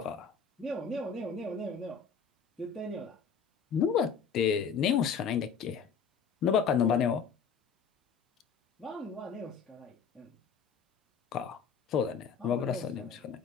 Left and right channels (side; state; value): right; quieter; 6.4 dB